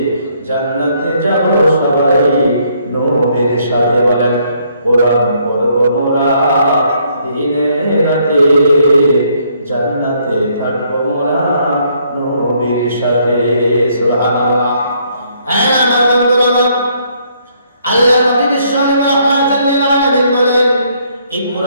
জান্নাতে যাব সবাই নবীর সাথে। বলেন কোরআন পড়ব মোরা দিনে রাতে, জান্নাতে থাকব মোরা নবীর সাথে। সুবহানাল্লাহ। আমার বন্ধুরা আমার, আল্লাহ নবী বিশ্বনবী রাহমাতুল লিল আলামিন বলেন এই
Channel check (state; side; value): inverted; both; correlation -0.68